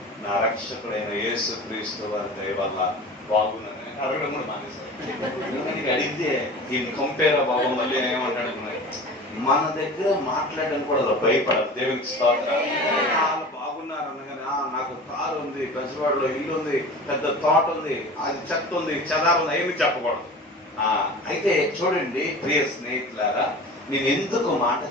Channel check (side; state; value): both; normal; correlation 0.37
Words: నా రక్షకుడైన యేసు క్రీస్తు వారి దయ వల్ల బాగున్నాను. అడగడం కూడా మానేశారు. అడిగితే ఈ కంపేర్ బాబు మళ్ళీ ఏమంటాడు, మన దగ్గర మాట్లాడడానికి కూడా భయపడరు. దేవునికి స్తోత్రం. వాళ్ళు బాగున్నారు అనగానే నాకు కారు ఉంది, బెజవాడలో ఇల్లు ఉంది, పెద్ద తోట ఉంది, అది చెత్త ఉంది, చెదారు ఉంది, ఏమి చెప్పకూడదు. అయితే చూడండి ప్రియ స్నేహితులారా, నేను ఎందుకు మాట